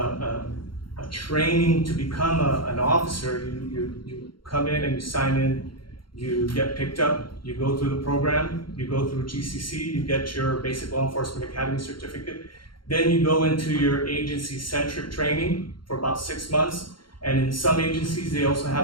training to become an officer, you come in and you sign in, you get picked up, you go through the program, you go through GCC, you get your Basic Law Enforcement Academy certificate, then you go into your agency-centric training for about 6 months, and in some agencies, they also have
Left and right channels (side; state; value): right; late; 0.73 ms